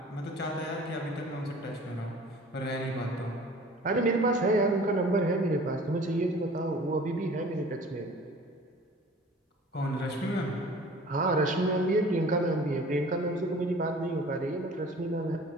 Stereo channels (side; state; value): both; normal; correlation 0.47